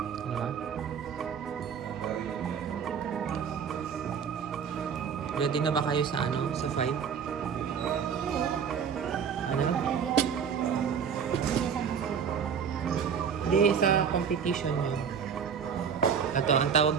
Diba? Ready na ba kayo sa ano? Sa 5? Ano? Hindi, sa competition nyo. Ito, ang tawag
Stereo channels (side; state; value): left; quieter; 7.1 dB